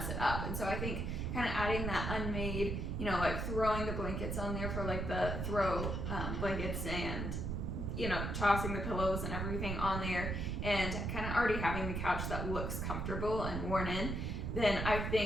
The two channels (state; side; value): noise; right; rumble, 2 dB below the sound